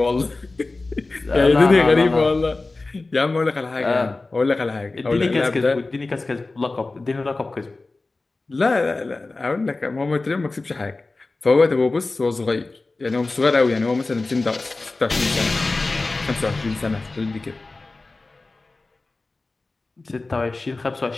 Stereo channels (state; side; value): quieter; right; 3.4 dB